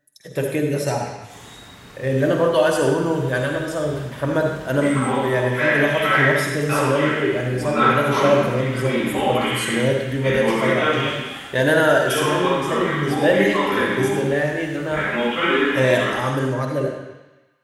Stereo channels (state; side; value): identical; both; correlation 1.00